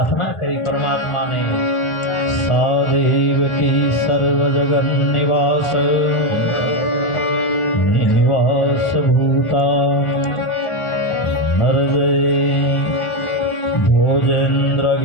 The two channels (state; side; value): late; right; 1.4 ms